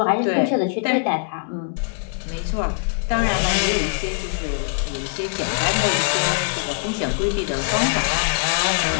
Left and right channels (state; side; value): silent; right; digital silence